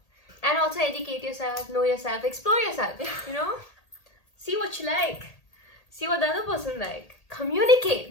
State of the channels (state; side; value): late; right; 1.8 ms